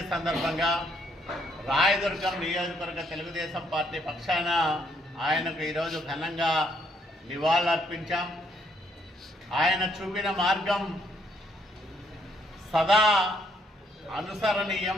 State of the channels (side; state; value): both; normal; correlation 0.70